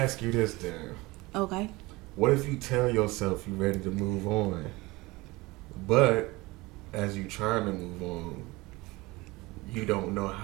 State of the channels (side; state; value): left; quieter; 22.0 dB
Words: you this then. Okay. What if you tell yourself you're ready to move on, but as you trying to move on, you don't know